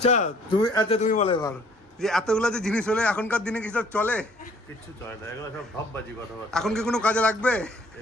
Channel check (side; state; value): both; normal; correlation 0.58